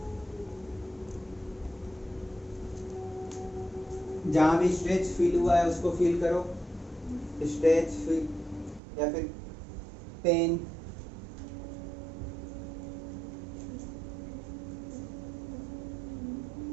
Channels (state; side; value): drops out; left; at 8.8 s